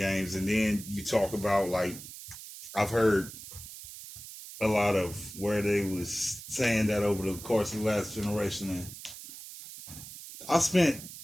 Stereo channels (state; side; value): noise; right; hiss, 13 dB below the sound